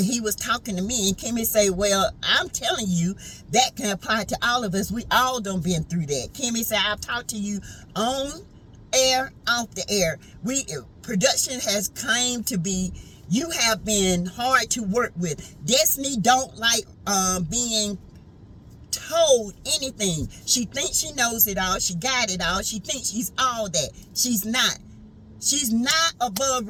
was talking to me. And Kimmy said, well, I'm telling you, that can apply to all of us. We all done been through that. Kimmy said, I've talked to you on air, off the air. Production has claimed to be, you have been hard to work with. Destiny don't like being told anything. She thinks she knows it all. She got it all. She thinks she's all that. She's not. She's not above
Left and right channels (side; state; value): both; identical; correlation 1.00